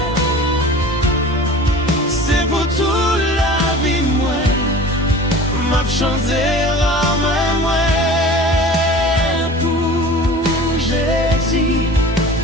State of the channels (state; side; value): normal; both; correlation 0.40